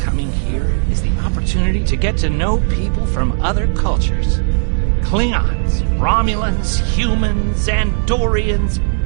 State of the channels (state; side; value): silent; left; 64 dB below the other